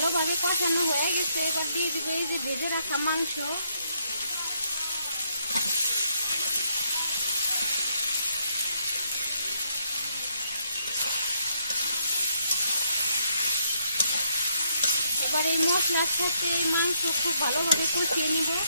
কষানো হয়ে গেছে। এবার দিয়ে দিব এই যে ভেজে রাখা মাংস। এবার এই মশলার সাথে এই মাংস খুব ভালোভাবে কষিয়ে নিব।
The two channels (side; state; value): both; inverted; correlation -0.74